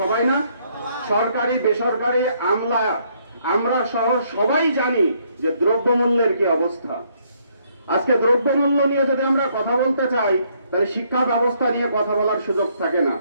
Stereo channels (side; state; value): both; inverted; correlation -0.69